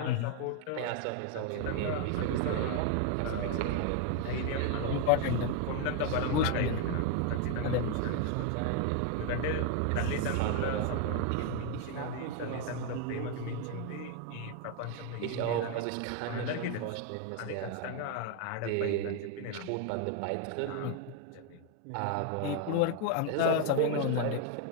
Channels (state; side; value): different; both; correlation 0.01